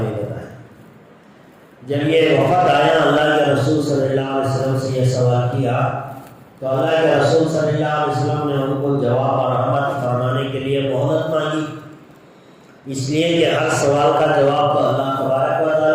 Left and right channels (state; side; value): identical; both; correlation 1.00